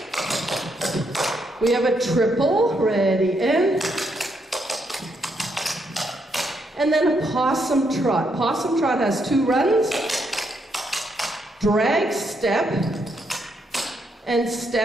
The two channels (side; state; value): both; normal; correlation 0.77